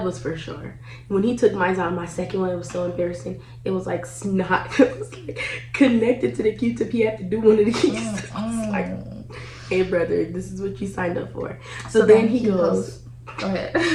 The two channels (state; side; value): identical; both; correlation 1.00